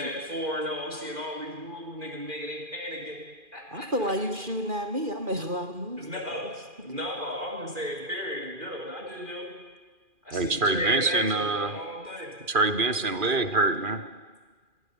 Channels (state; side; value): late; left; 2.4 ms